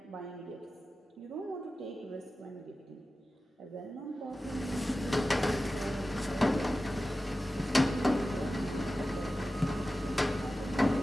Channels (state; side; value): normal; both; correlation 0.94